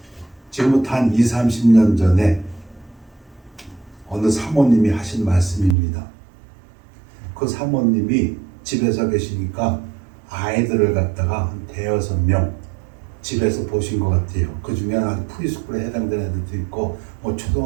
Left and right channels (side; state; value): left; drops out; at 5.8 s